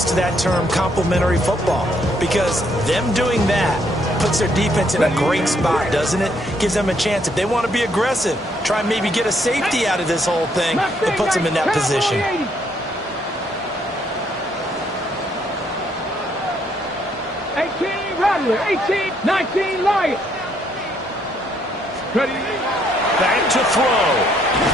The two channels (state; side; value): normal; both; correlation 0.70